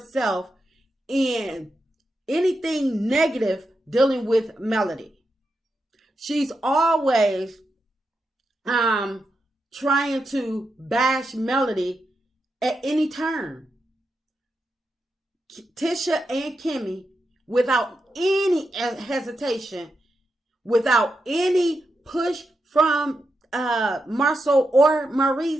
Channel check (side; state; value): both; normal; correlation 0.86